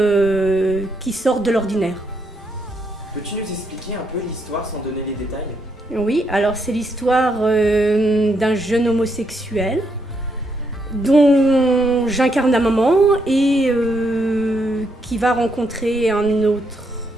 qui sortent de l'ordinaire. Peux-tu nous expliquer un peu l'histoire sans donner les détails? Oui, alors c'est l'histoire d'un jeune homosexuel dont j'incarne la maman et qui va rencontrer un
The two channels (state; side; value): normal; both; correlation 0.77